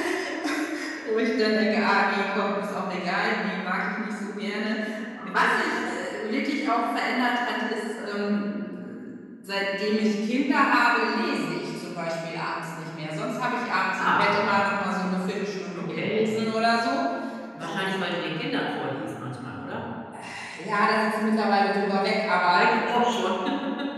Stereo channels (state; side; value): identical; both; correlation 1.00